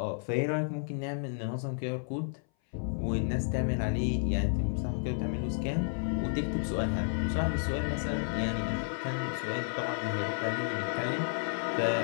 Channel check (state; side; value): silent; right; 57 dB below the other